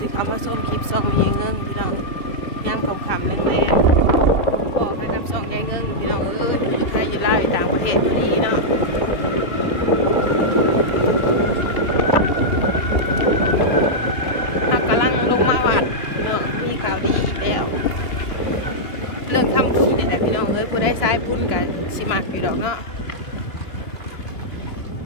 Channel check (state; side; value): late; right; 2.9 ms